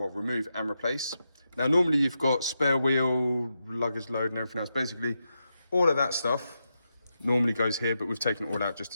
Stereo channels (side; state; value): both; inverted; correlation -0.87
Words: and replace. Now, normally you've got spare wheel, luggage load and everything else. Basically, all of that stuff normally goes here, but we've taken it all out just